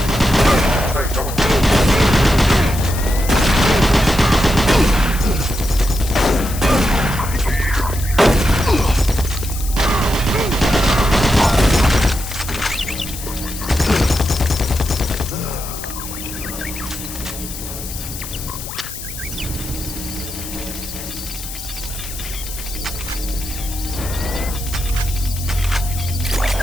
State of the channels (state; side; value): noise; left; hiss, 10 dB below the sound